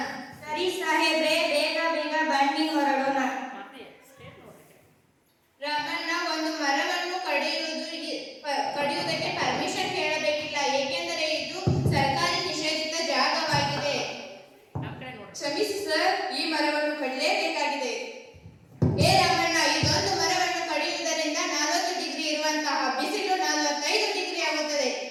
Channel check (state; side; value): identical; both; correlation 1.00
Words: ಸರಿ ಸಾಹೇಬ್ರೆ, ಬೇಗ ಬನ್ನಿ, ಹೊರಡೋಣ. ರಾಮಣ್ಣ, ಒಂದು ಮರವನ್ನು ಕಡಿಯುವುದಕ್ಕೆ ಪರ್ಮಿಷನ್ ಕೇಳಬೇಕಿಲ್ಲ, ಏಕೆಂದರೆ ಇದು ಸರ್ಕಾರಿ ನಿಷೇಧಿತ ಜಾಗವಾಗಿದೆ. ಕ್ಷಮಿಸಿ ಸರ್, ಈ ಮರವನ್ನು ಕಡಿಲೇಬೇಕಾಗಿದೆ. ರಾಮಣ್ಣ, ಇದೊಂದು ಮರವನ್ನು ಕಡಿಯುವುದರಿಂದ 40 ಡಿಗ್ರಿ ಇರುವಂತಹ ಬಿಸಿಲು 45 ಡಿಗ್ರಿ ಆಗುತ್ತದೆ.